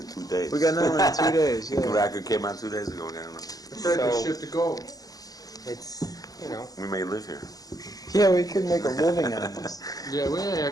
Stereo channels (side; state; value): right; late; 0.17 ms